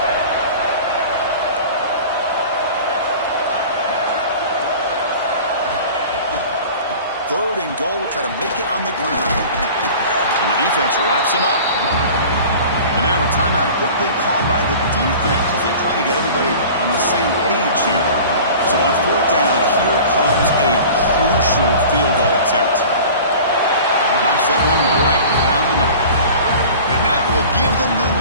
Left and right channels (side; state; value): both; inverted; correlation -0.41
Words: Third and goal, try to make it on the ground. And the defense wraps him up. And now a timeout quickly called by the defense as they try to get everybody on the same page here. So on 4th down, here comes a crucial field goal attempt. Knocks that one right down the middle. And that will give them the